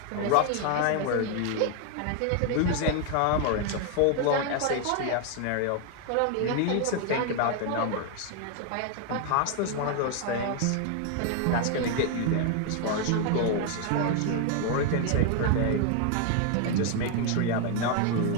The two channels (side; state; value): both; different; correlation 0.01